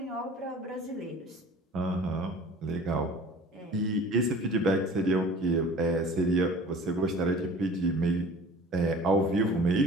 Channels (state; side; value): normal; both; correlation 0.44